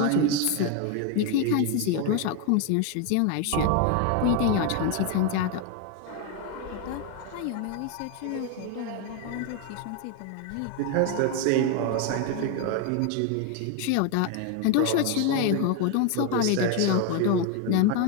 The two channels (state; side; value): different; both; correlation 0.01